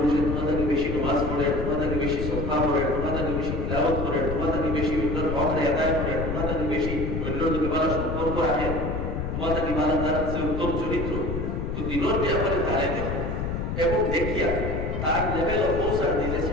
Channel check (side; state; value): left; noise; rumble, 3 dB below the sound